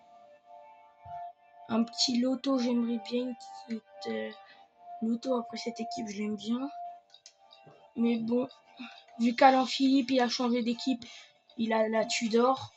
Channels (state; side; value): identical; both; correlation 1.00